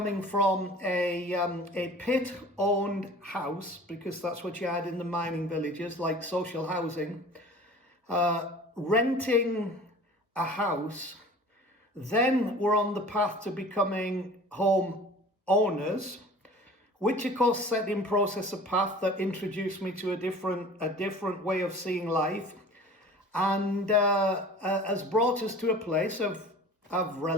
from a pit-owned house, because that's what you had in the mining villages, like social housing, renting a house, then were on the path to becoming home owners, which of course set in process a path that introduced me to a different way of seeing life, and has brought us to a place of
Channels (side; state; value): both; normal; correlation 0.43